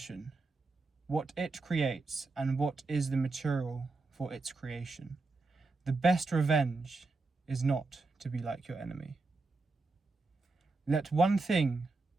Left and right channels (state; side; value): quieter; left; 3.7 dB